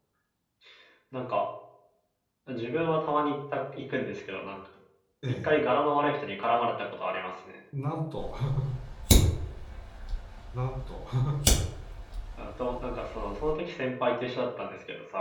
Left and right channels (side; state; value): both; identical; correlation 1.00